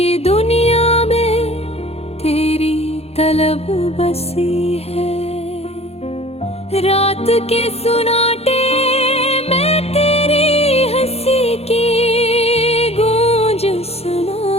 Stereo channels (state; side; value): late; right; 0.30 ms